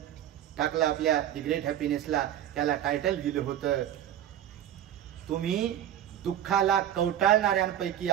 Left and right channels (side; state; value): left; quieter; 11.0 dB